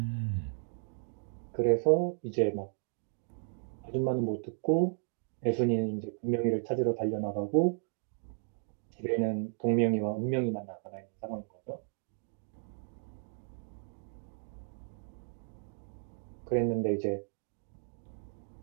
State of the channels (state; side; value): silent; left; 55 dB below the other